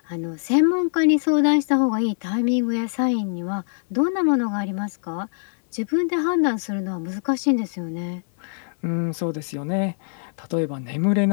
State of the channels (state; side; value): silent; right; 61 dB below the other